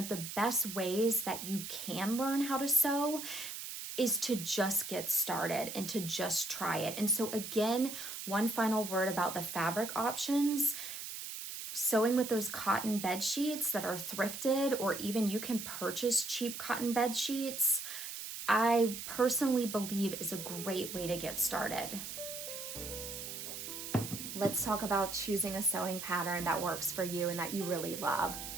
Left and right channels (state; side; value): noise; right; hiss, 8 dB below the sound